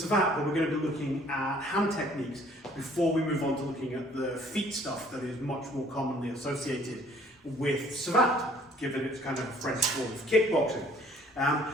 where we're going to be looking at hand techniques before we move on to looking at the feet stuff that is much more commonly associated with Savate, given it's kind of a French form of kickboxing.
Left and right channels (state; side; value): normal; both; correlation 0.58